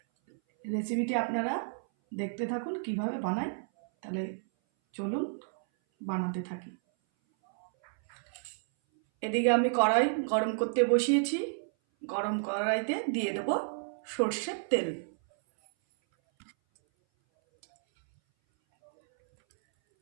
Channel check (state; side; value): silent; left; 57 dB below the other